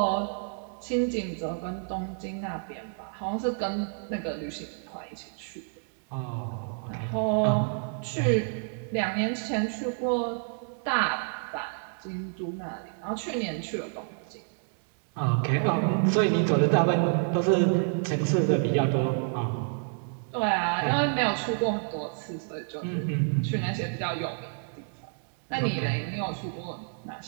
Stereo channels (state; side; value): silent; left; 59 dB below the other